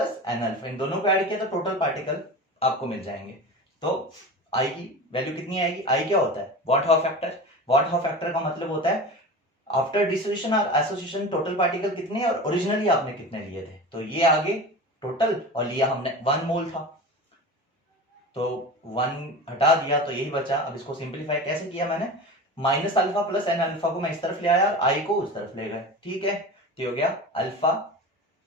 N alpha, इन दोनों को ऐड किया तो टोटल पार्टिकल आपको मिल जाएंगे। तो आई की वैल्यू कितनी आएगी? आई क्या होता है? What how factor. What how factor का मतलब होता है आफ्टर डिसोसिएशन और एसोसिएशन टोटल पार्टिकल कितने और ओरिजिनली आपने कितने लिए थे। तो ये आगे टोटल, और लिया हमने 1 मोल था, तो 1 हटा दिया तो यही बचा। अब इसको सिंप्लीफाई कैसे किया मैंने? Minus alpha plus N alpha को मैं इस तरफ ले आया और आई को उस तरफ ले गए। ठीक है, तो हो गया अल्फा,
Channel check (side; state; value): both; normal; correlation 0.31